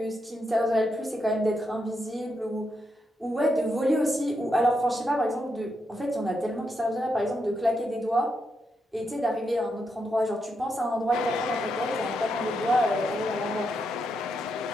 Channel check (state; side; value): normal; both; correlation 0.82